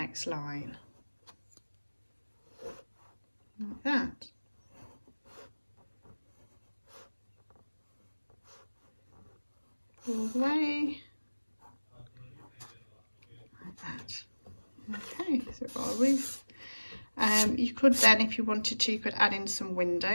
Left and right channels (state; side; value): inverted; both; correlation -1.00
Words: line. Like that. All the way. Like that. Okay, so we've got a roof. You could then, if you wanted to, you could add in some